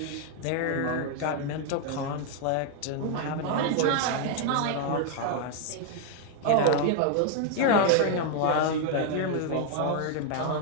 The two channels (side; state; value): both; different; correlation 0.00